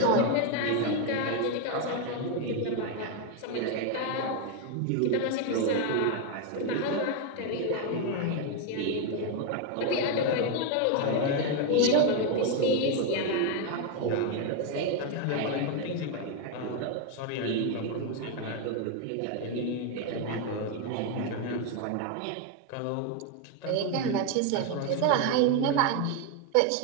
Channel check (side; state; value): both; different; correlation 0.01